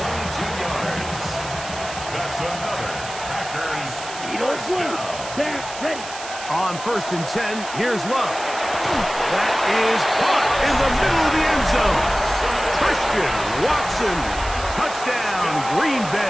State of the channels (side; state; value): right; noise; hiss, 11 dB below the sound